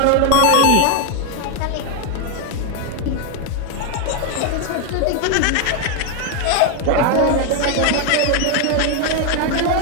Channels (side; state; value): both; different; correlation 0.01